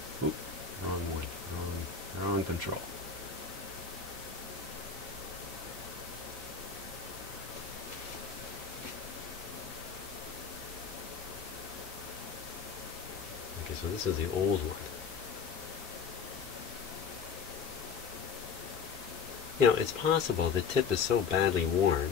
Oop, wrong one. Wrong control. Okay, so this is the old one. You know, it's possible the tip is so badly worn.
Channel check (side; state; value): right; quieter; 6.0 dB